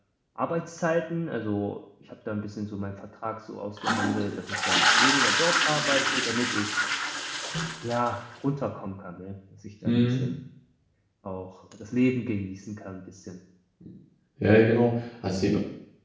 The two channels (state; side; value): identical; both; correlation 1.00